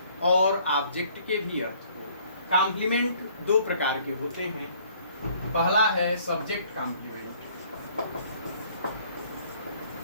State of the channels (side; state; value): both; inverted; correlation -0.59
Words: और ऑब्जेक्ट के भी अर्थ को। कॉम्प्लीमेंट दो प्रकार के होते हैं। पहला है सब्जेक्ट कॉम्प्लीमेंट।